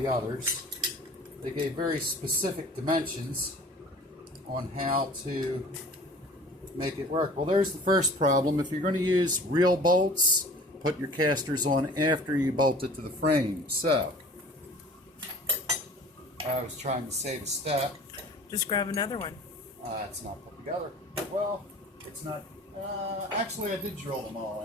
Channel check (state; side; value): normal; both; correlation 0.45